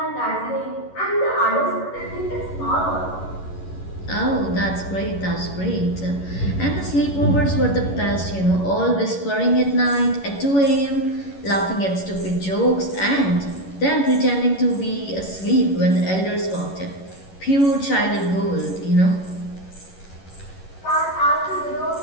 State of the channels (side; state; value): right; late; 11 ms